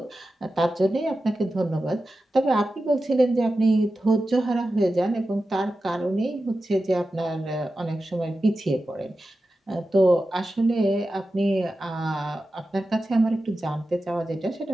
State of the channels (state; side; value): normal; both; correlation 0.92